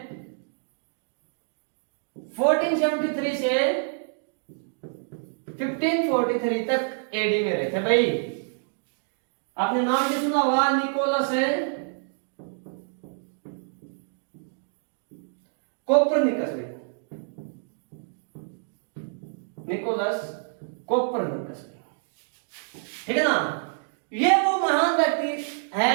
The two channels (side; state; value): left; silent; digital silence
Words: 1473 से 1543 तक एडी में रहे थे भाई। आपने नाम भी सुना हुआ, निकोलस कोपरनिकस भाई, निकोलस कोपरनिकस भाई। ठीक है ना? ये वो महान व्यक्ति